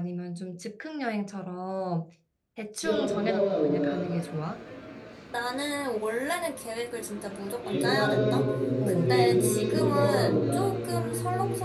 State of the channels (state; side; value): identical; both; correlation 1.00